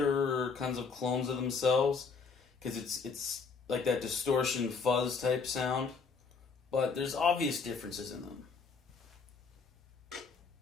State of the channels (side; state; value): right; quieter; 5.1 dB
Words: kinds of clones of themselves, because it's like that distortion fuzz type sound, but there's obvious differences in them.